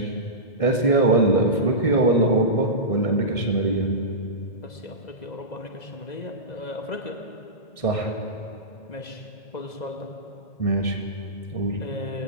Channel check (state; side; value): late; right; 1.6 ms